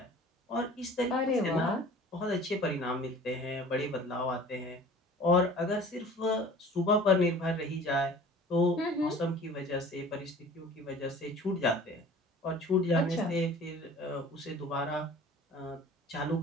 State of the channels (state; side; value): normal; both; correlation 0.45